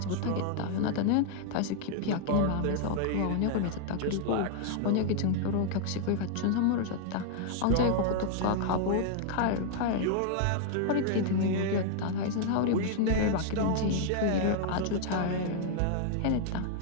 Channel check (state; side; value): different; both; correlation 0.00